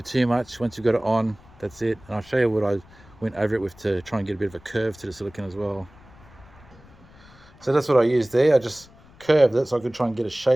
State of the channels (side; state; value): left; noise; rumble, 24 dB below the sound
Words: too much. Once you've got it on, that's it. And I'll show you what I went over it with to try and get a bit of a curve to the silicone as well. So that's what I used there. I just curved it so I could try and get a